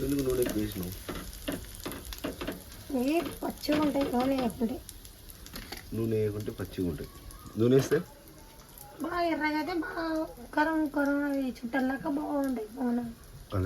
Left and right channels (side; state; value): both; identical; correlation 1.00